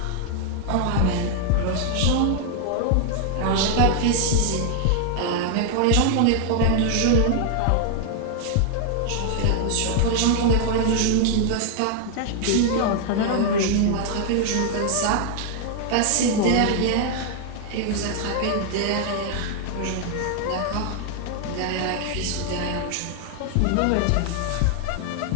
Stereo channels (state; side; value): different; both; correlation 0.00